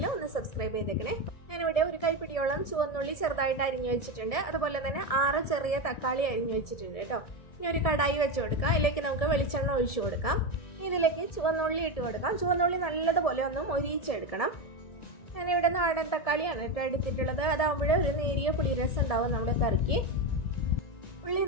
ഒന്ന് സബ്സ്ക്രൈബ് ചെയ്തേക്കണേ. ഞാനിവിടെ ഒരു കൈപ്പിടിയോളം ചുവന്നുള്ളി ചെറുതായിട്ട് അരിഞ്ഞു വെച്ചിട്ടുണ്ട്. അതുപോലെ തന്നെ 6 ചെറിയ തക്കാളി അരിഞ്ഞു വെച്ചിട്ടുണ്ട് കേട്ടോ. ഇനി ഒരു കടായി വെച്ച് കൊടുക്കാം. അതിലേക്ക് നമുക്ക് വെളിച്ചെണ്ണ ഒഴിച്ചു കൊടുക്കാം. ഇതിലേക്ക് ചുവന്നുള്ളി ഇട്ട് കൊടുക്കാം. ചുവന്നുള്ളി നല്ലതുപോലെ ഒന്ന് മൊരിയിച്ചെടുക്കണം. ഞാനിവിടെ നാടൻ തക്കാളിയാണ് കേട്ടോ എടുത്തിട്ടുള്ളത്. അതാകുമ്പോൾ ഒരു നേരിയ പുളിരസം ഉണ്ടാവും നമ്മുടെ കറിക്ക്. ഉള്ളി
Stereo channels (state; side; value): late; right; 1.7 ms